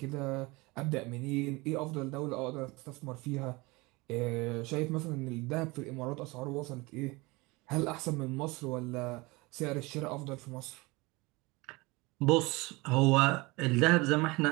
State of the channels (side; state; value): left; quieter; 24.0 dB